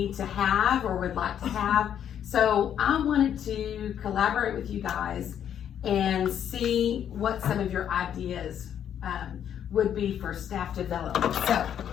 to have or would like to have. So I wanted to collaborate with you guys and see what some of your ideas would be for staff development. So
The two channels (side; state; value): right; quieter; 9.4 dB